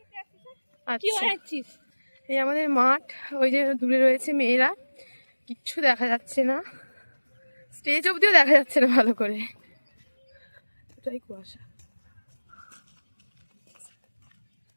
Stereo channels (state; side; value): inverted; both; correlation -1.00